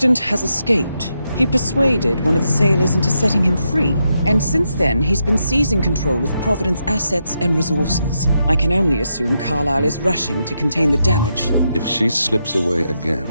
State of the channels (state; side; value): inverted; both; correlation -0.82